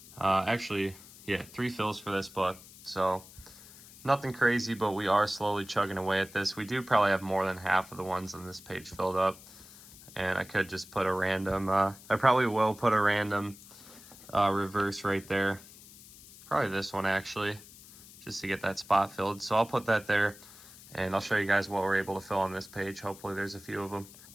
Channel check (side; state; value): left; noise; hiss, 20 dB below the sound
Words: Actually, yeah, 3 fills for this book, so nothing crazy, but we are slowly chugging away at this. We do probably have more than half of the ones on this page filled up, and I could just put a random, I probably will put a random reverse right there. Probably this one actually, just to get that spot filled. So I'll put that there, and I'll show you guys what we're able to fill on this page. Hopefully there's a few of them.